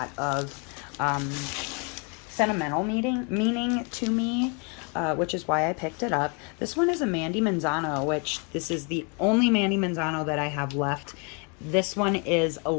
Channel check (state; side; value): quieter; right; 34.8 dB